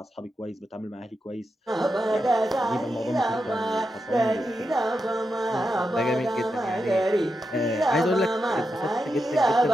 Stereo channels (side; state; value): both; normal; correlation 0.87